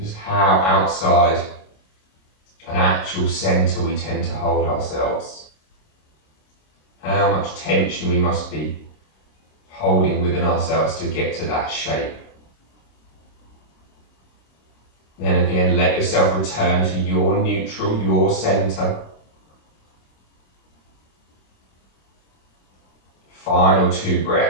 how outside an actual centre we tend to hold ourselves. How much tension we must be holding within ourselves to get to that shape. Then again, let yourself return to your neutral, your centre. Final 2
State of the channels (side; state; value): right; late; 26 ms